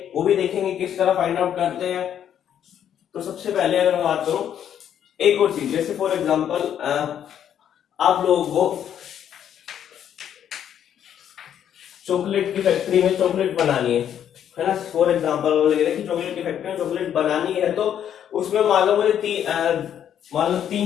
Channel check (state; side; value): quieter; right; 9.6 dB